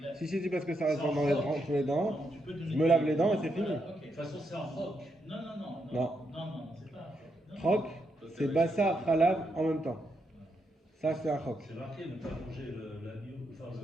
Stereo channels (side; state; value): both; normal; correlation 0.81